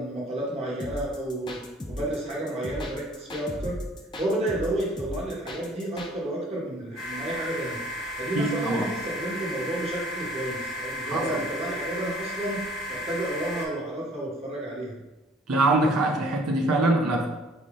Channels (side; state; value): both; normal; correlation 0.55